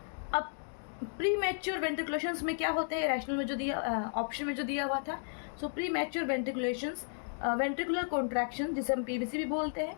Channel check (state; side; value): silent; right; digital silence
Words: अब प्री मैच्योर वेंट्रिकुलेशंस में क्या होते हैं, रैशनल में जो दिया ऑप्शन में जो दिया हुआ था। So premature ventriculations ventricular contraction जिसे हम पीवीसी भी बोलते हैं,